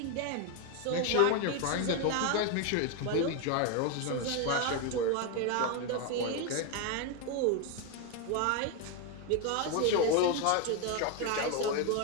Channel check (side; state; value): both; different; correlation 0.02